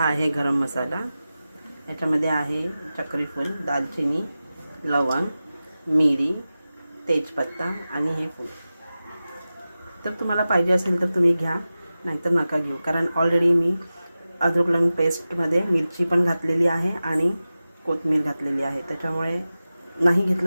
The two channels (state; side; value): inverted; both; correlation -0.95